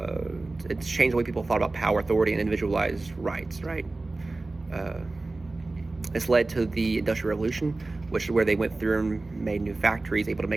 It's changed the way people thought about power, authority, and individualized rights, right? This led to the Industrial Revolution, which is where they went through and made new factories, able to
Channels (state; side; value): quieter; left; 3.2 dB